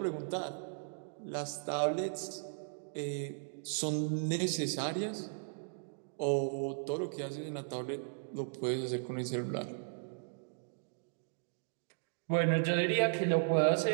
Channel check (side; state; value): left; silent; digital silence